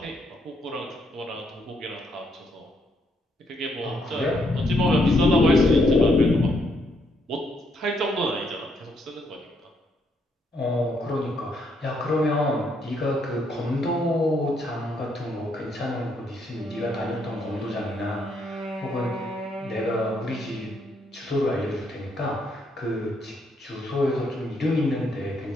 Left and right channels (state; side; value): normal; both; correlation 0.74